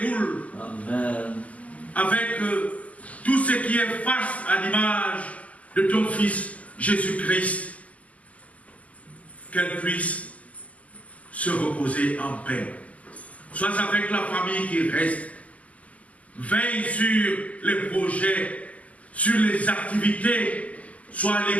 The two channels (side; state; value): right; late; 0.072 ms